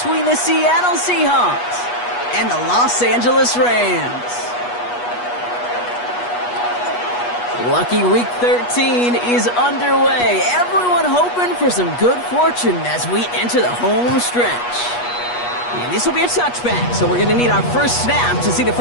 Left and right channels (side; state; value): right; late; 8.3 ms